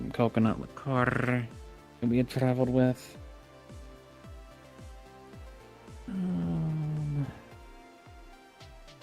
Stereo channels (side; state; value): both; identical; correlation 1.00